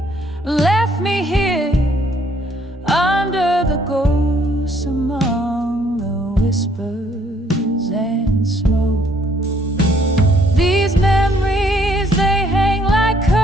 left me here under the ghosts, among the whispers and smoke. These memories, they hang like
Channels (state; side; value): normal; both; correlation 0.66